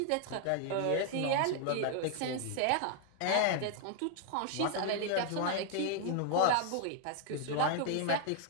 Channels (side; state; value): both; different; correlation 0.00